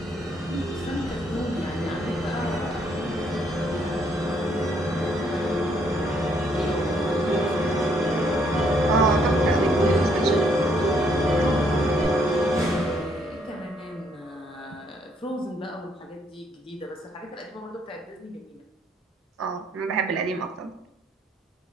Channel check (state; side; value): normal; both; correlation 0.70